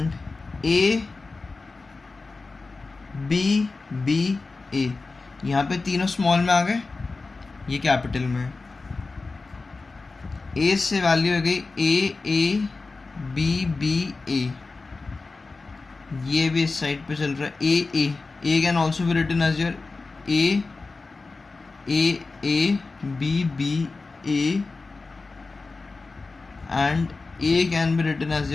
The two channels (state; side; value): quieter; right; 3.8 dB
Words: A B A. यहाँ पे तीनों स्मॉल में आ गए, ये कैपिटल में. A से वैल्यू हो गई A B A. ये भी इस साइड पे चल रहा है. A can also be written as your A B A, and A can be written as